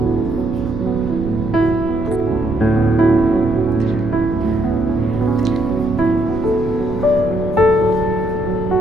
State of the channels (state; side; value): noise; right; rumble, 9 dB below the sound